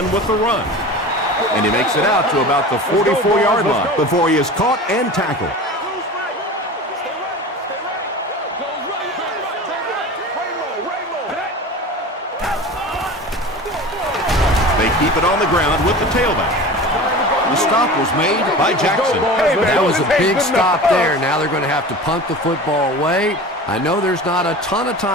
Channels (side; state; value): both; normal; correlation 0.35